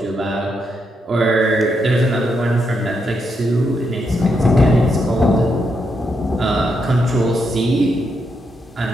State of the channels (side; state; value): both; normal; correlation 0.81